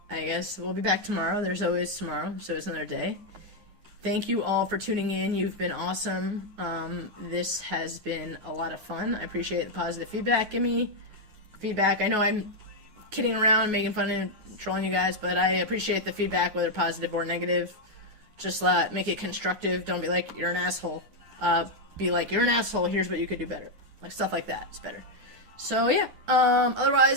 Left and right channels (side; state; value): left; late; 9.5 ms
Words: I guess we'll be back tomorrow. There's always tomorrow, so it's another day. Thank you all for tuning in. You've been awesome. This has been a lot of fun. I appreciate the positive feedback. Give me feedback. I know I'm kidding around, making fun and trolling you guys, but I appreciate the feedback, whether positive or negative. Just make it constructive. Don't be like, you're an asshole. Be like, you're an asshole. Here's what you could do better. Like, stuff like that is better. So, yeah.